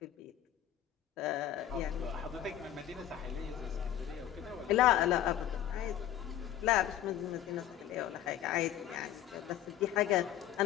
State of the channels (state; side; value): quieter; right; 11.3 dB